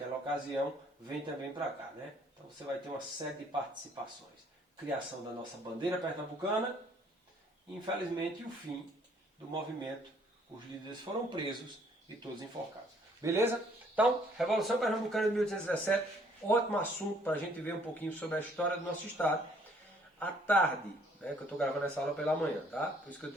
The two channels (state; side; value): normal; both; correlation 0.62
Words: ocasião, vem também para cá, né? Então você vai ter uma série de participações. Criação da nossa bandeira pernambucana e, infelizmente, o fim do movimento. Os líderes foram presos e todos enforcados. Beleza? Então, Revolução Pernambucana de 1817, ótimo assunto para a gente ver um pouquinho sobre a história do nosso estado. À tarde, né, que eu estou gravando essa aula pela manhã, tá? Por isso que eu